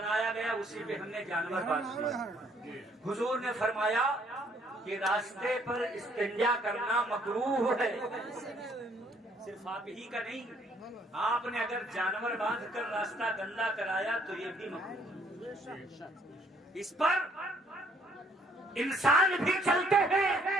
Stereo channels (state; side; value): normal; both; correlation 0.64